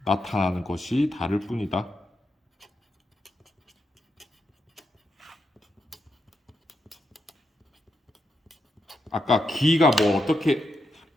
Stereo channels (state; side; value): normal; both; correlation 0.84